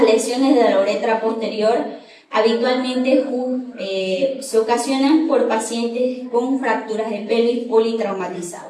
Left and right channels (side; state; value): both; identical; correlation 1.00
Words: lesiones de la uretra posterior habitualmente se ocasionan por pacientes con fracturas de pelvis